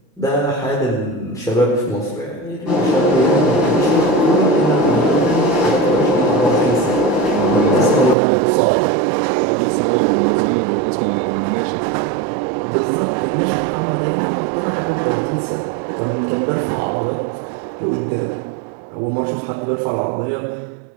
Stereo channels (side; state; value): left; drops out; at 8.2 s